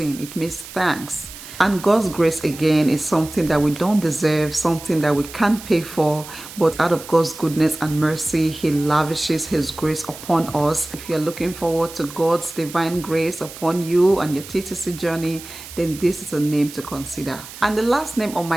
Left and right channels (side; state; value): right; noise; hiss, 15 dB below the sound